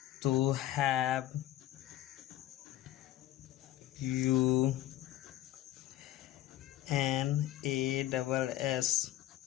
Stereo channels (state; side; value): quieter; right; 14.1 dB